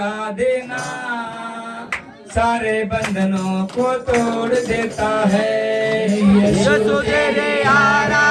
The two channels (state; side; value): identical; both; correlation 1.00